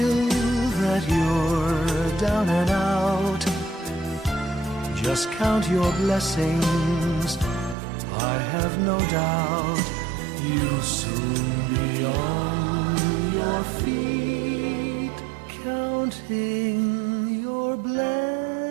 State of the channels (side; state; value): left; drops out; at 7.8 s